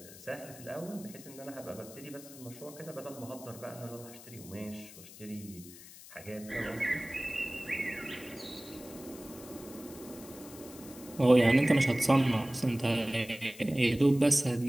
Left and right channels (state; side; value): noise; left; hiss, 17 dB below the sound